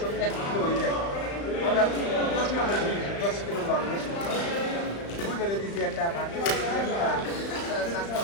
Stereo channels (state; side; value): late; right; 35 ms